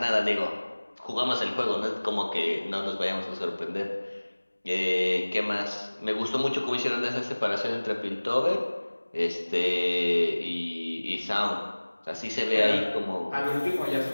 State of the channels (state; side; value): inverted; both; correlation -1.00